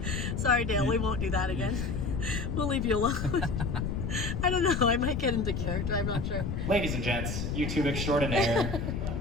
Sorry, Dale, we won't do that again. We'll leave you alone. I don't know, I might get into character, I'm not sure. Ladies and gents, YouTube extraordinaire,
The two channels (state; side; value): noise; left; rumble, 2 dB below the sound